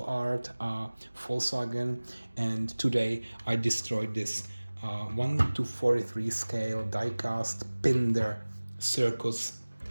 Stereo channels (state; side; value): inverted; both; correlation -1.00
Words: Art Volkswagen, and today I destroyed this 1:43 scale die-cast Pinder Circus,